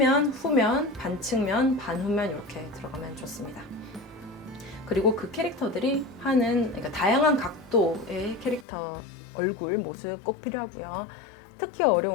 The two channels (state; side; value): drops out; right; at 8.7 s